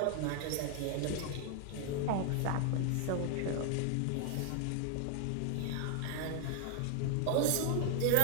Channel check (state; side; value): different; both; correlation 0.00